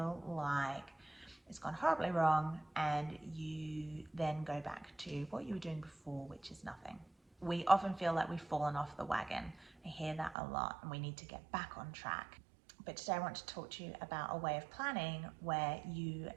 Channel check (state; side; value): drops out; left; at 10.4 s